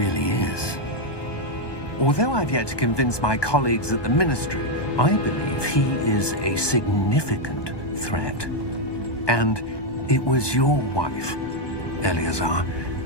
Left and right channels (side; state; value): right; late; 1.2 ms